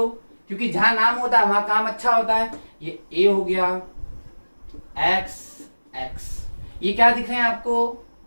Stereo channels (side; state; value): both; inverted; correlation -1.00